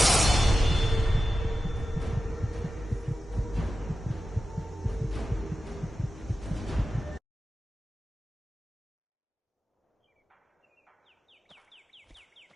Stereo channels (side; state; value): both; normal; correlation 0.93